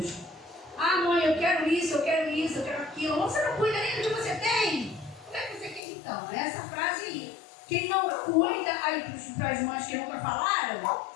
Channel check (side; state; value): right; drops out; at 5.8 s